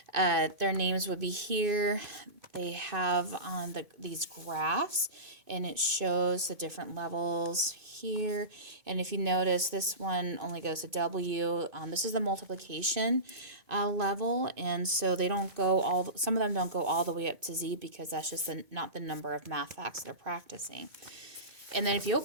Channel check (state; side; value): late; left; 2.5 ms